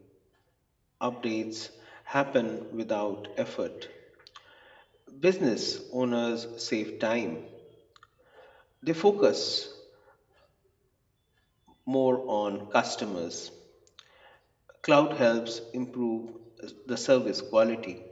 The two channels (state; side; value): identical; both; correlation 1.00